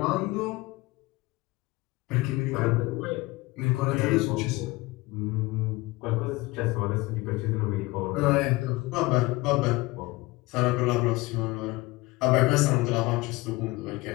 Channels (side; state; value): right; quieter; 21.6 dB